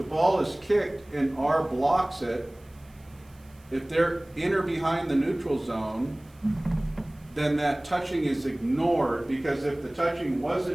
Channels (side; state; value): right; noise; hiss, 30 dB below the sound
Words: kicked and R blocks it, if they're in or behind the neutral zone, then that touching is ignored, because if the touching